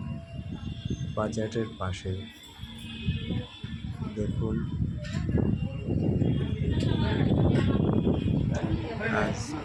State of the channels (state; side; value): identical; both; correlation 1.00